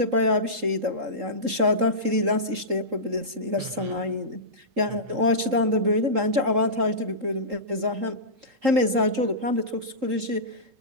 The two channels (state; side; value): late; left; 3.8 ms